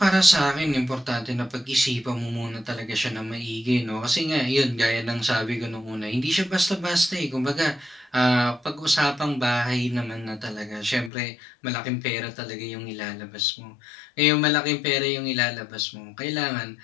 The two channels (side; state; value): right; drops out; at 11.1 s